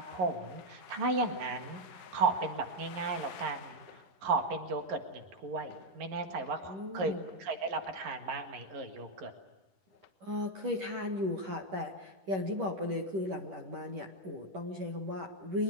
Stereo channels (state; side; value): late; left; 10 ms